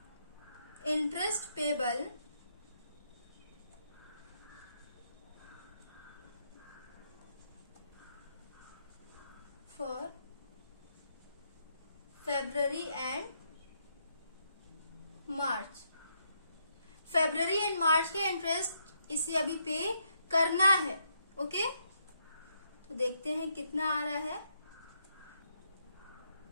Interest payable for February and March. February and March के इंटरेस्ट इसे अभी पे करना है। ओके, तो देखते हैं कितना आ रहा है।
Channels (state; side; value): inverted; both; correlation -0.77